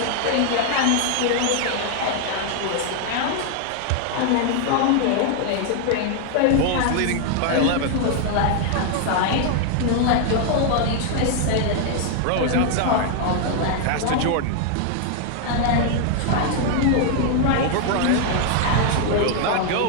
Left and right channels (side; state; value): both; different; correlation 0.00